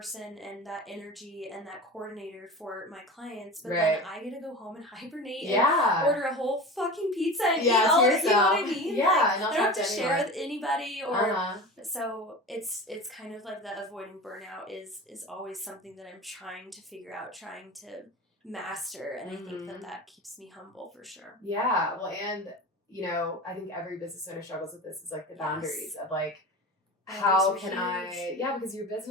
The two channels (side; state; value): both; normal; correlation 0.31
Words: and that energy and that coordinator for my clients, but then I get to go home and hibernate and order a whole fucking pizza and eat all of it, you know what I mean? Yeah, like, I don't have to share with anybody or so it's kind of like the avoiding burnout is always something that I'm trying to figure out, trying to master, and I think that keeps me humble for sure. Yeah, well, and I think every business owner struggles with this, is like the boundaries of like, how can because your